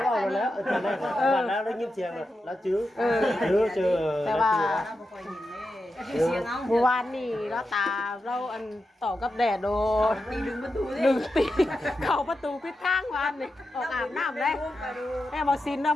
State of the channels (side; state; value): both; normal; correlation 0.89